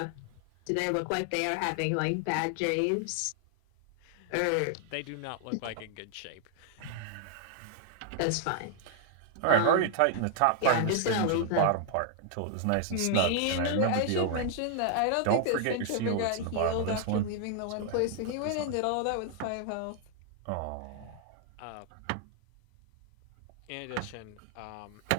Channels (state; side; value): different; both; correlation 0.00